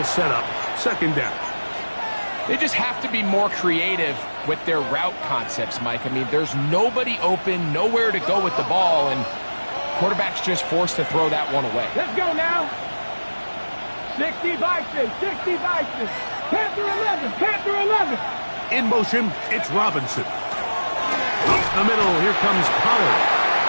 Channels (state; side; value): inverted; both; correlation -1.00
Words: set up 2nd down. They just have to be more creative with their route concepts, Mike. I mean, there's nobody open, nowhere to go with the ball, and quarterback's just forced to throw that one away. Let's go now. 60 Bison, 60 Bison. Panther 11, Panther 11. In motion, it's Robinson. Up the middle, here comes Pollard.